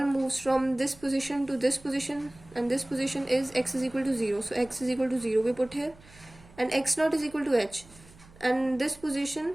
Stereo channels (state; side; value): noise; right; hum, 24 dB below the sound